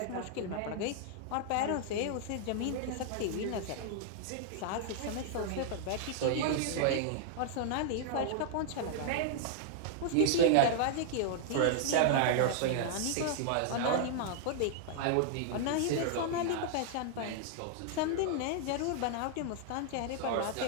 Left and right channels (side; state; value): both; different; correlation -0.01